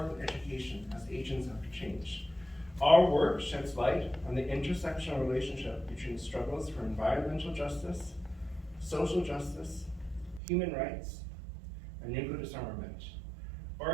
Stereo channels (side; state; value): left; drops out; at 10.4 s